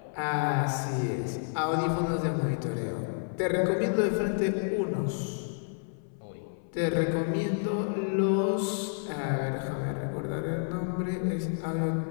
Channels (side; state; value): right; silent; 58 dB below the other